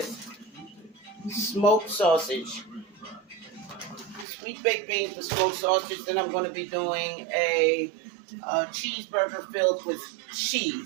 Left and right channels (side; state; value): left; drops out; at 4.2 s